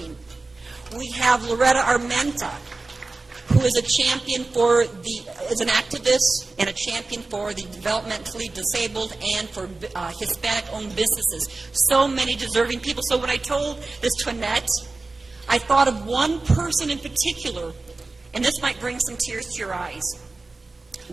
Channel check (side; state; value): left; quieter; 3.5 dB